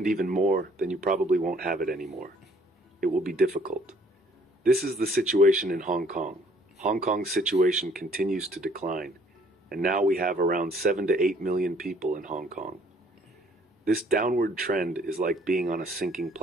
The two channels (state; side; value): normal; both; correlation 0.60